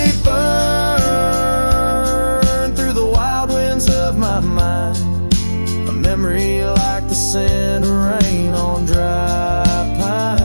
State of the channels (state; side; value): inverted; both; correlation -1.00